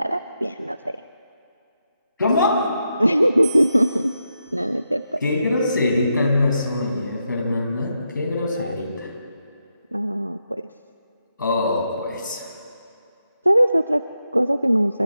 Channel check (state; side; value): inverted; both; correlation -0.85